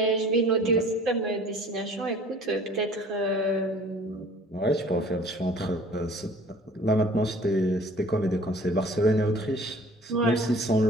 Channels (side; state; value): both; normal; correlation 0.49